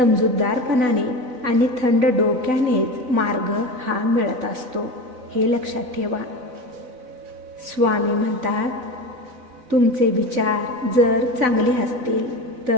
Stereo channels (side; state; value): left; late; 4.0 ms